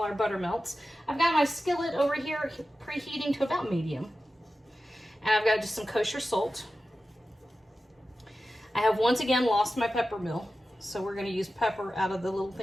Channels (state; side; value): normal; both; correlation 0.93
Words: butter melts. I've got my skillet over here preheating to about medium. And I've got just some kosher salt. I have once again lost my pepper mill, so we're gonna use pepper out of the little